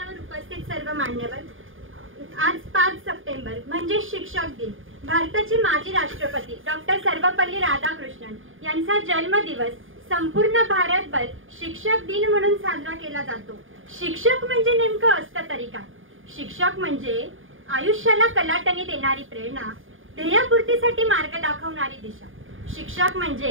उपस्थित सर्व मान्यवर, आज 5 सप्टेंबर म्हणजे शिक्षक दिन. भारताचे माजी राष्ट्रपती डॉक्टर सर्वपल्ली राधाकृष्णन यांचा जन्मदिवस संपूर्ण भारतभर शिक्षक दिन म्हणून साजरा केला जातो. शिक्षक म्हणजे नेमकं असतं तरी काय? शिक्षक म्हणजे आयुष्याला कलाटणी देणारी प्रेरणा, ध्येयपूर्तीसाठी मार्ग दाखवणारी दिशा. शिक्षक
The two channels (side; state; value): left; late; 0.59 ms